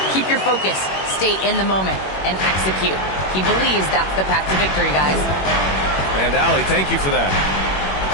Keep your focus, stay in the moment, and execute." He believes that's the path to victory, guys. And Allie, thank you for that.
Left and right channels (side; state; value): right; late; 21 ms